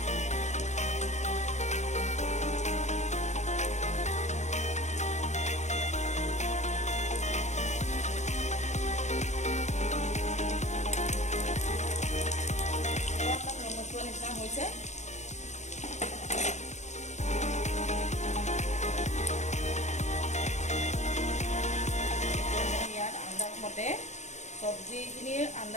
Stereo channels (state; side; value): late; right; 0.33 ms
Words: নিচিনা হৈছে। ইয়াত আন্দাজমতে চব্জিখিনিৰ